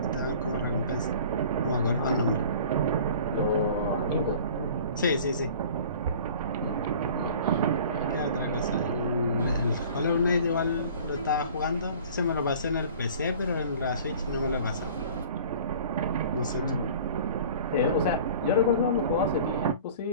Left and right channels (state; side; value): inverted; both; correlation -0.45